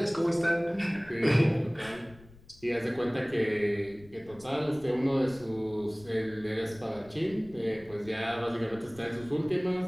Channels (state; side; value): noise; left; rumble, 23 dB below the sound